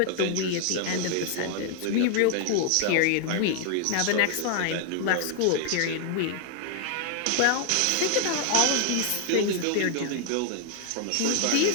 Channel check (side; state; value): both; different; correlation 0.00